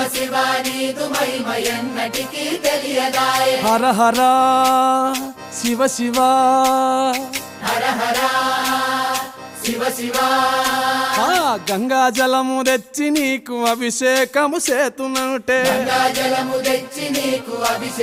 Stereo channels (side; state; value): both; identical; correlation 1.00